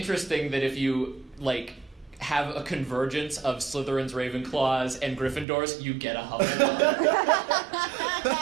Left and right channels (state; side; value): drops out; left; at 5.5 s